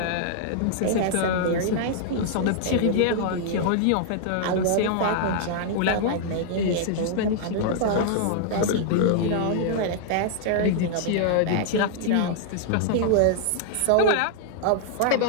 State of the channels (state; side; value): different; both; correlation -0.01